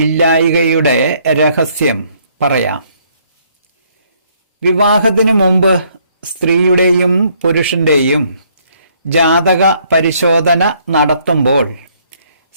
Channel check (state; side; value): inverted; both; correlation -0.66